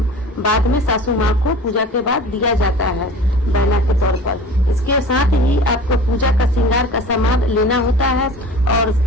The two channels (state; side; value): normal; both; correlation 0.40